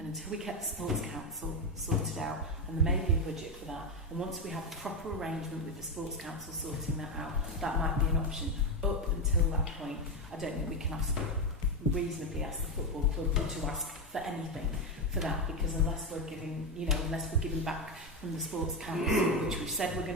until we get the Sports Council sorted out, and there may be a budget for that, and once we have a proper arrangement with the Sports Council sorting that out, that might be an option. Up until that point, I don't think we can reasonably ask the football club to ask for anything for that, because unless we're giving back from the Sports Council, which we've said we're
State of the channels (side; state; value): both; normal; correlation 0.11